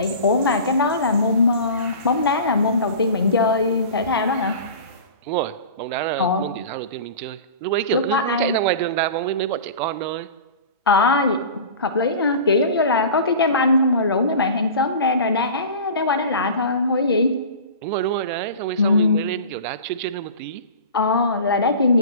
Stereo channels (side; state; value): both; inverted; correlation -0.36